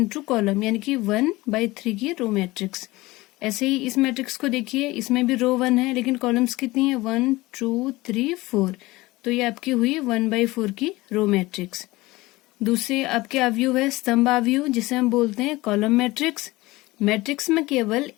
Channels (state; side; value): quieter; right; 20.1 dB